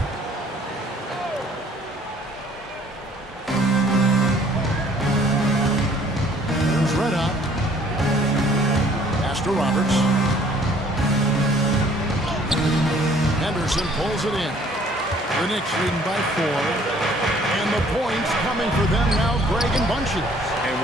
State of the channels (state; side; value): normal; both; correlation 0.58